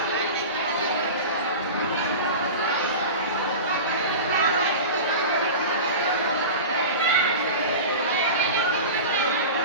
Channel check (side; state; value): both; inverted; correlation -0.30